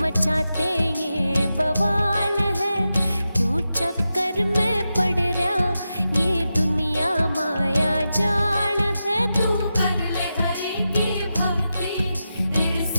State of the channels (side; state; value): both; inverted; correlation -0.90